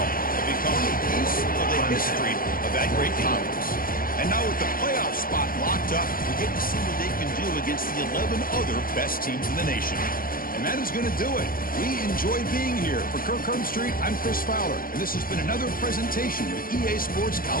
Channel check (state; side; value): late; right; 0.41 ms